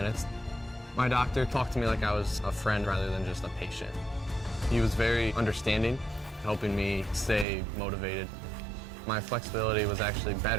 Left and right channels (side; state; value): left; drops out; at 7.5 s